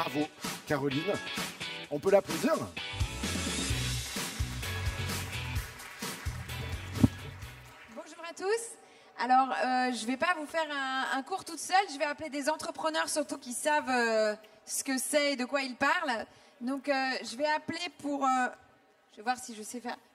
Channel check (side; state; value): both; identical; correlation 1.00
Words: Caroline. On peut l'applaudir. Bonjour à tous. Alors, je ne vais pas vous faire un cours toute seule, je vais appeler des entrepreneurs surtout qui savent ce que c'est et de quoi ils parlent. Donc, je vais appeler pour... je vais voir si je sais faire.